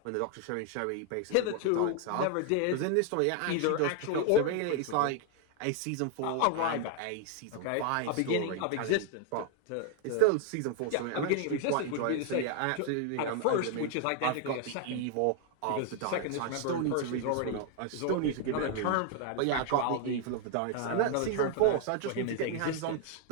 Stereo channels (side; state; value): both; different; correlation 0.00